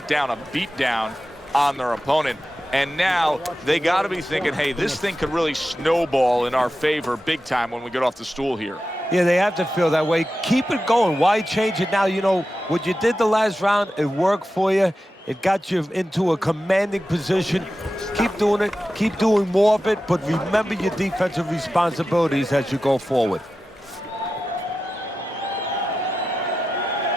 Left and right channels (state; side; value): normal; both; correlation 0.92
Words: down a beatdown on their opponent. And now they got to be thinking, hey, this thing could really snowball in our favor big time when we get off the stool here. Yeah, they have to feel that way. Keep it going. Why change it now? You know, what you did the last round, it worked for you. It got you into a commanding position. Keep doing it. Keep doing more of it. But remember your defensive responsibilities as you go forward.